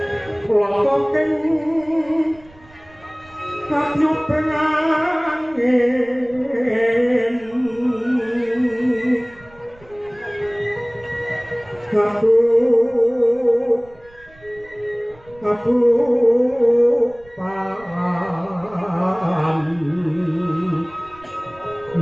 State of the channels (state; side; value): noise; right; rumble, 26 dB below the sound